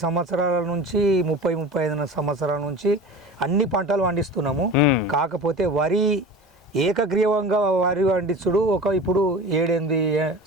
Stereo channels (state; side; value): normal; both; correlation 0.35